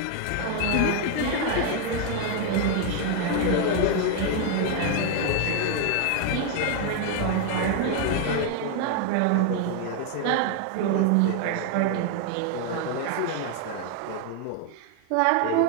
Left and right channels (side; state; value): both; different; correlation 0.01